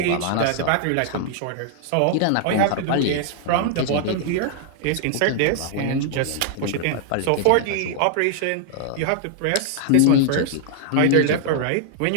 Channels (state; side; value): different; both; correlation 0.00